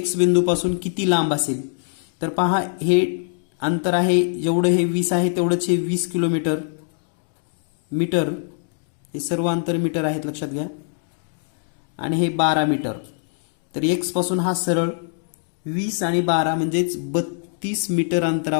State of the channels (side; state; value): right; silent; 64 dB below the other